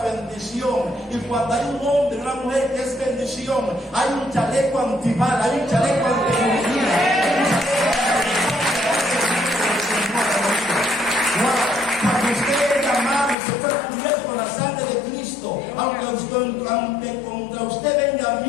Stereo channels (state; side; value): drops out; right; at 13.4 s